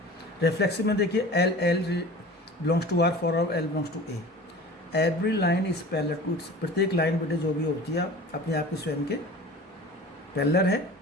Reflexive में देखिए L belongs to R for L belongs to A, every line is parallel to, प्रत्येक लाइन बेटे जो भी होती है अपने आप के स्वयं के पैरेलल है,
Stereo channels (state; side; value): normal; both; correlation 0.39